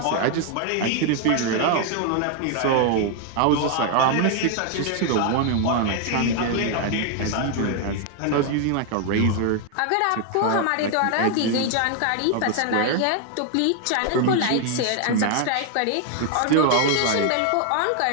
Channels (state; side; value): different; both; correlation 0.00